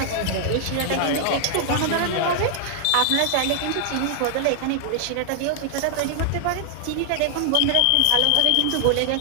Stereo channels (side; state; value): both; different; correlation 0.00